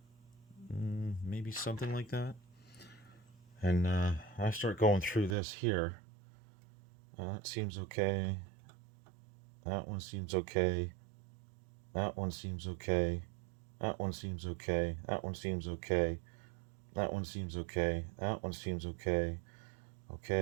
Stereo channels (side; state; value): left; drops out; at 5.4 s